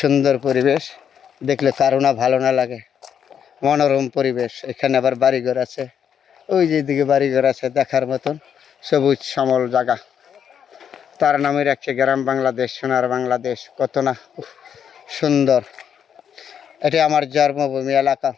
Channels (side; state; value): right; quieter; 8.3 dB